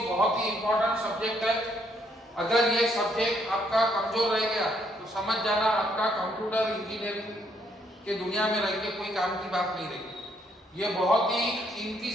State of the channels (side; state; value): both; normal; correlation 0.71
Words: बहुत ही इंपॉर्टेंट सब्जेक्ट है। अगर ये सब्जेक्ट आपका कमजोर रह गया तो समझ जाना आपका कंप्यूटर इंजीनियरिंग के दुनिया में रह के कोई काम की बात नहीं रही। ये बहुत ही कीमती